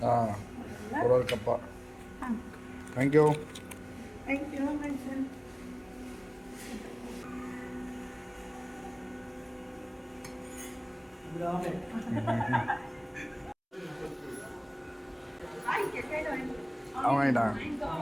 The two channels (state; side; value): identical; both; correlation 1.00